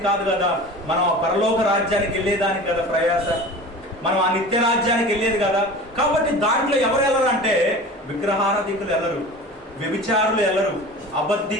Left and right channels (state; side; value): normal; both; correlation 0.37